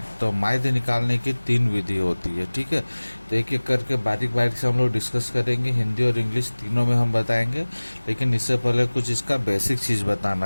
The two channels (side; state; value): both; inverted; correlation -1.00